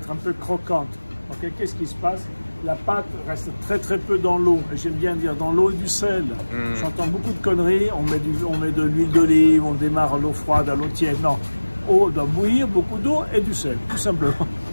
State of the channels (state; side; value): inverted; both; correlation -1.00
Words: un peu croquante. Ok, qu'est-ce qui se passe? La pâte reste très peu dans l'eau. Et j'aime bien dire dans l'eau et du sel. J'entends beaucoup de conneries. On met de l'huile d'olive, on démarre à l'eau froide, à l'eau tiède. Non, eau doit bouillir, beaucoup d'eau et du sel, tout simplement.